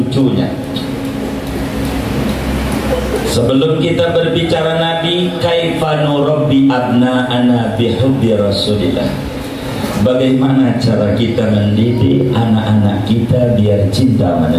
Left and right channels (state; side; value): identical; both; correlation 1.00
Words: Sebelum kita berbicara Nabi, kaifa nurabbi abna'ana bihubbi Rasulillah. Bagaimana cara kita mendidik anak-anak kita biar cinta sama